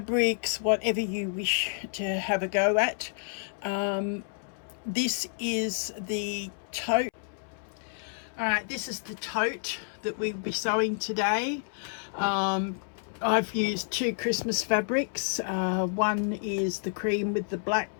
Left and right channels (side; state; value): right; silent; 58 dB below the other